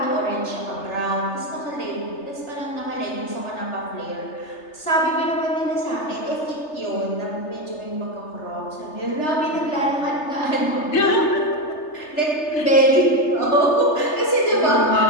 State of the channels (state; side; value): late; right; 3.3 ms